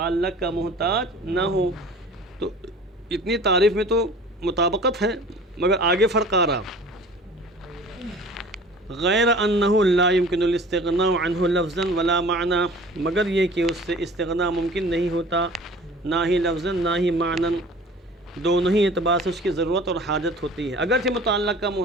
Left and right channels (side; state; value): both; normal; correlation 0.44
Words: کا محتاج نہ ہو. تو اتنی تعریف میں تو مطابقت ہے، مگر آگے فرق آ رہا. غیر انہ لا يمكن الاستغناء عنہ لفظا ولا معنی، مگر یہ کہ اس سے استغناء ممکن نہیں ہوتا، نہ ہی لفظا نہ ہی معنی، دونوں ہی اعتبار سے اس کی ضرورت اور حاجت ہوتی ہے. اگرچہ متعلق کا